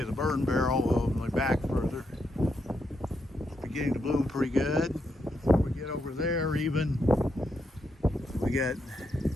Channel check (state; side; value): normal; both; correlation 0.81